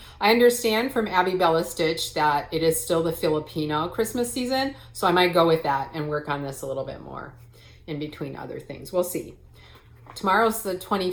I understand from Abby Bella Stitch that it is still the Filipino Christmas season, so I might go with that and work on this a little bit more in between other things. We'll see. Tomorrow's the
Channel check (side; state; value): both; identical; correlation 1.00